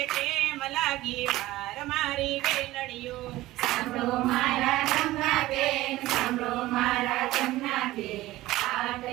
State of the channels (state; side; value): quieter; left; 17.0 dB